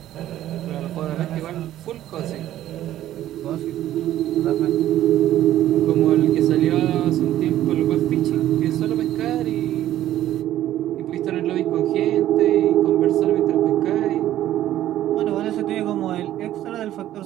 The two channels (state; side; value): quieter; left; 13.0 dB